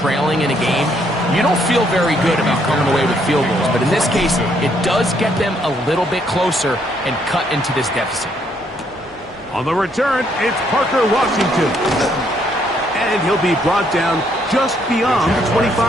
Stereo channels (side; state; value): right; noise; hum, 27 dB below the sound